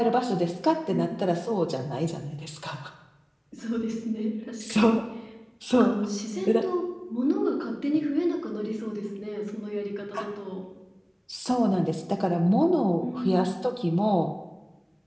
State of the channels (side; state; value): both; identical; correlation 1.00